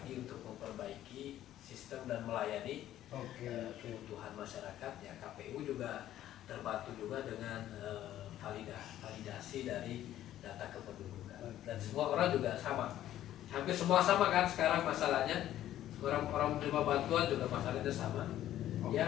untuk memperbaiki sistem dan melayani kebutuhan masyarakat. Ya, KPU juga terbantu juga dengan validasi dari data kependudukan. Dan semua orang juga sama. Hampir semua sama kan sekarang masalahnya. Orang menerima bantuan juga masalahnya sama.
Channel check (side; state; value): right; quieter; 12.6 dB